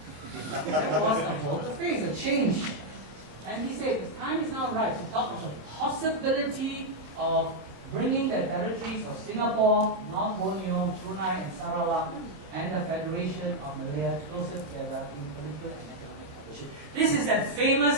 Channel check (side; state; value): left; late; 26 ms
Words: there was a volte-face, a change. And he said, the time is now right to talk of the possibility of bringing the territories of Singapore, North Borneo, Brunei and Sarawak, and the Federation of Malaya closer together in political and economic cooperation. This is that